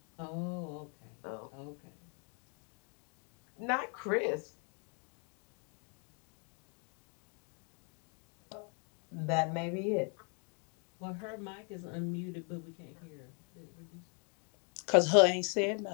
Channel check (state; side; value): quieter; right; 39.6 dB